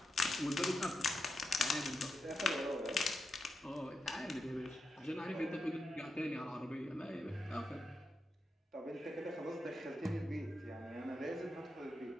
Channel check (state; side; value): normal; both; correlation 0.86